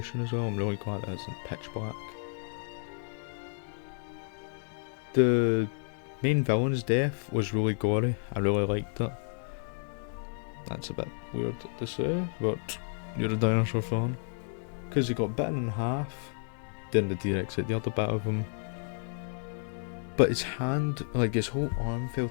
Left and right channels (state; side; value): silent; right; 57 dB below the other